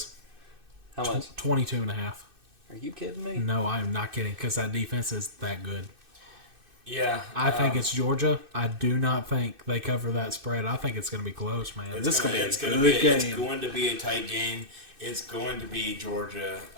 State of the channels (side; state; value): left; late; 2.6 ms